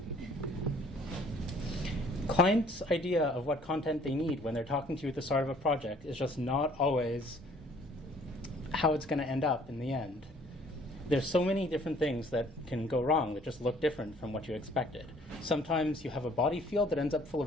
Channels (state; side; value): normal; both; correlation 0.58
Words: Clients' idea of what content they need when they're talking to you at the start of a project is just not always how it's going to end up in the end. There's so many different things that can go wrong that just look different from what you expected. Sometimes you have a body field that ends up full